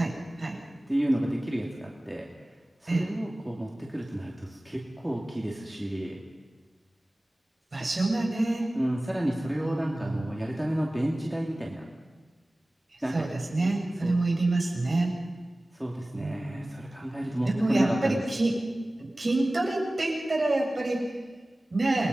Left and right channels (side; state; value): both; normal; correlation 0.97